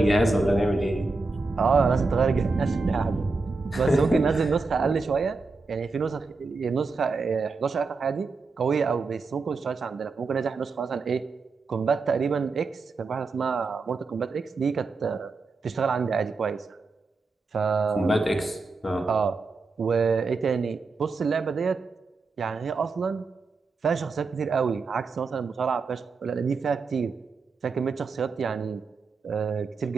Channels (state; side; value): quieter; left; 4.0 dB